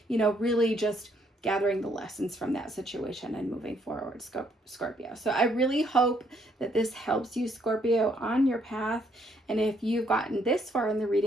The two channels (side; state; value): both; normal; correlation 0.70